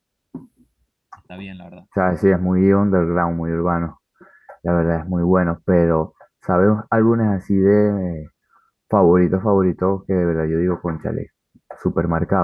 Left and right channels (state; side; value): identical; both; correlation 1.00